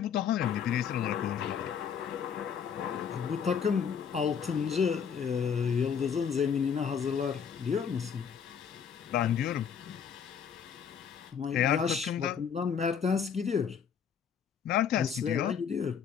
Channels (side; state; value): right; quieter; 7.4 dB